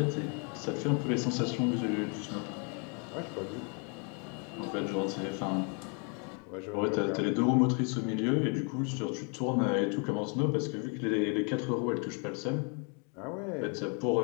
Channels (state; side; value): quieter; right; 37.1 dB